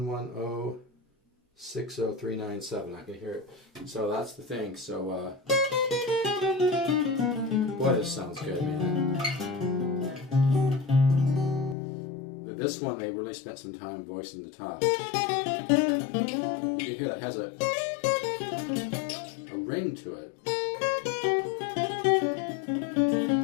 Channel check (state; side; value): drops out; right; at 11.8 s